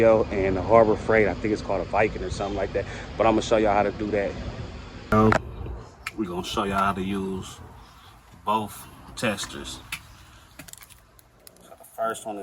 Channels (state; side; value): identical; both; correlation 1.00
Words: and the Harbor Freight. I think it's called a Viking or something like that. But I'm gonna show y'all how to do that. We're gonna show y'all how to use both testers. First one